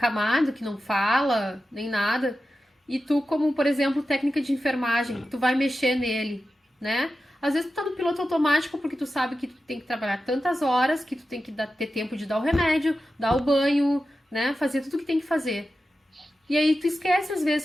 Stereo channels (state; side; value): normal; both; correlation 0.92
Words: que não fala, nem nada, e tu, como por exemplo, técnica de enfermagem, tu vai mexer nele, né? Às vezes tu tá no piloto automático porque tu sabe que tu tem que trabalhar tantas horas, que tu tem que ter tempo de dar o remédio, dar o banho, né? Fazer tudo o que tem que fazer. E aí tu esquece às